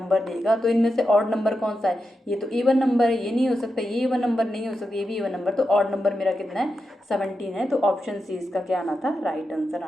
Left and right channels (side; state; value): both; normal; correlation 0.88